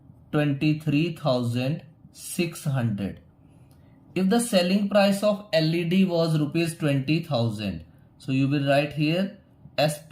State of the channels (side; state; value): both; identical; correlation 1.00